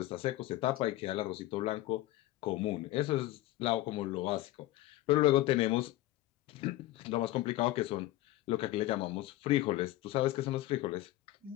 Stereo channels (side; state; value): right; quieter; 16.3 dB